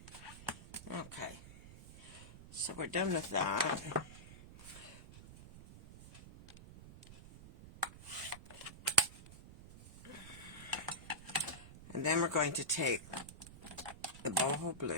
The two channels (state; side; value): noise; right; rumble, 16 dB below the sound